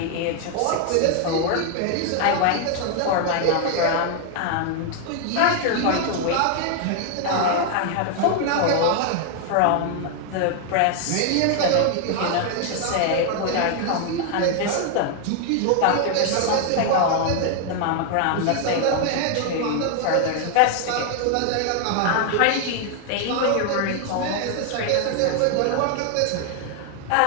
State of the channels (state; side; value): different; both; correlation 0.00